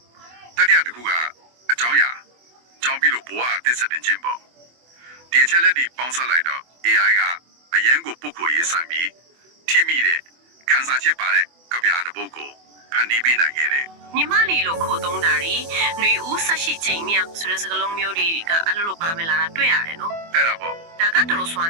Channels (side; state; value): left; late; 24 ms